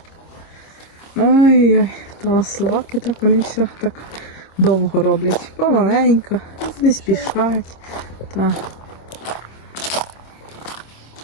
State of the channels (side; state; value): right; late; 26 ms